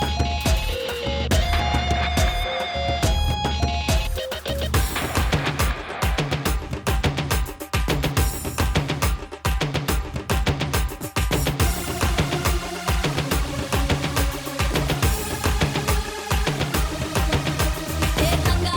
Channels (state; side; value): identical; both; correlation 1.00